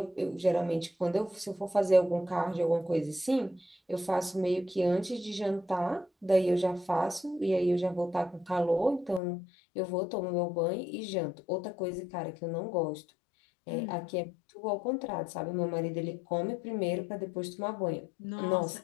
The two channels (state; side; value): drops out; right; at 9.2 s